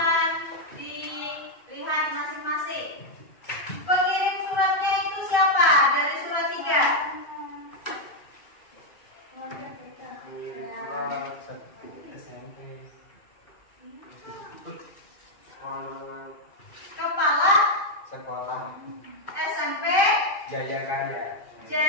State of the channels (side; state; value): right; late; 2.5 ms